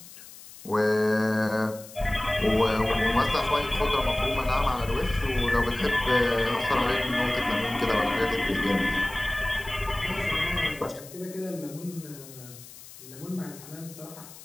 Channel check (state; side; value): noise; left; hiss, 18 dB below the sound